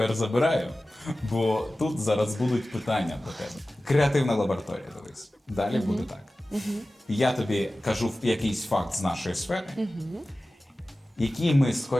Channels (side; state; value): both; normal; correlation 0.96